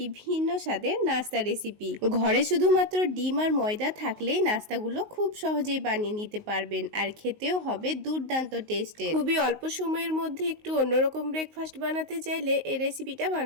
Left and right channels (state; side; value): late; left; 19 ms